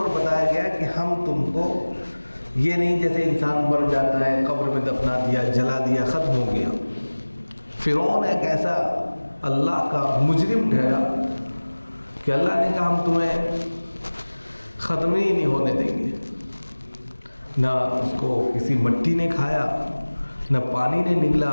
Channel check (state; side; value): inverted; both; correlation -1.00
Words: بتایا گیا کہ ہم تم کو یہ نہیں جیسے انسان مر جاتا ہے، قبر میں دفنا دیا، جلا دیا، ختم ہو گیا۔ فرعون ایک ایسا اللہ کا مجرم ٹھہرا کہ اللہ نے کہا ہم تمہیں ختم ہی نہیں ہونے دیں گے۔ نہ اس کو کسی مٹی نے کھایا، نہ پانی نے نگلا،